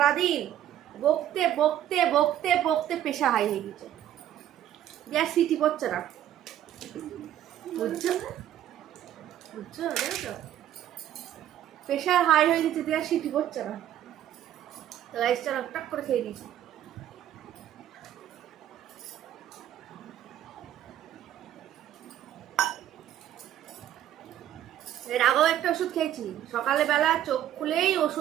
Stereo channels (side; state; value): left; quieter; 11.6 dB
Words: বকতে বকতে বকতে বকতে প্রেশার হাই হয়ে গেছে, গ্যাস সিটি পড়ছে না, বুঝছো বুঝছো, দেখো প্রেশার হাই হয়ে গেছে, গ্যাস সিটি পড়ছে না। তো রাইসটা টক করে খেয়ে নিয়েছি। এর আগেও একটা ওষুধ খেয়েছি, সকালে বেলা চোখ খুলেই